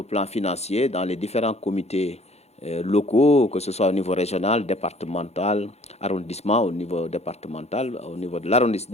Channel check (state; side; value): late; right; 0.31 ms